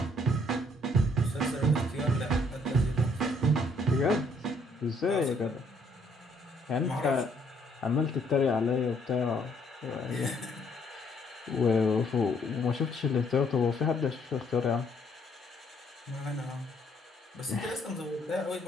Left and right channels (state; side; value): normal; both; correlation 0.66